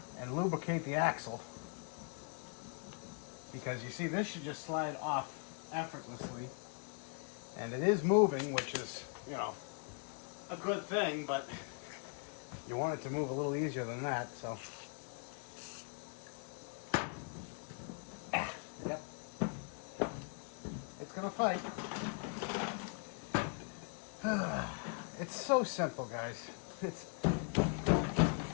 and lubricate the axle. Because you see, this should just slide off effortlessly. And it is moving, which is, you know, a good thing, but you want it to move a little easier than that, so. Yep. It's gonna fight. It's so simple, guys. It's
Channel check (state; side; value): quieter; right; 38.5 dB